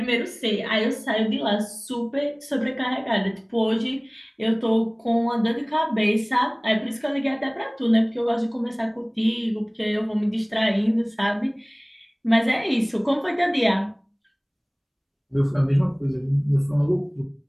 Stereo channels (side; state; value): both; identical; correlation 1.00